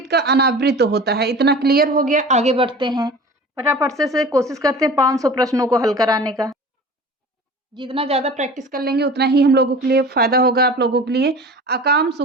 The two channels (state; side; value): normal; both; correlation 0.39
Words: का अनावृत होता है। इतना क्लियर हो गया, आगे बढ़ते हैं। फटाफट से कोशिश करते हैं 500 प्रश्नों को हल कराने का। जितना ज़्यादा प्रैक्टिस कर लेंगे उतना ही हम लोगों के लिए फायदा होगा, आप लोगों के लिए। अकाम